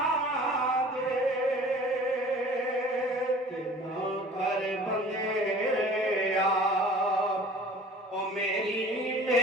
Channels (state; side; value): normal; both; correlation 0.46